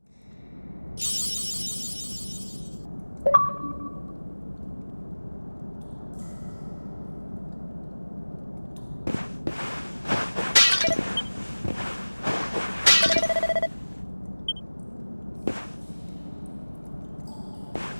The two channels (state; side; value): inverted; both; correlation -1.00